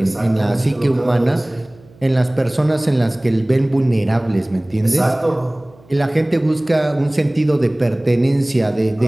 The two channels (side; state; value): right; noise; hum, 27 dB below the sound